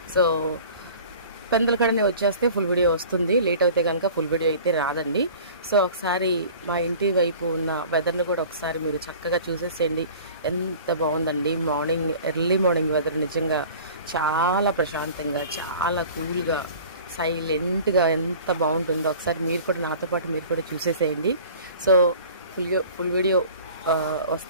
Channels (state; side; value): inverted; both; correlation -0.44